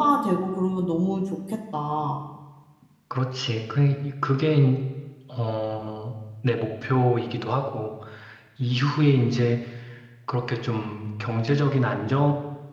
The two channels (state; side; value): identical; both; correlation 1.00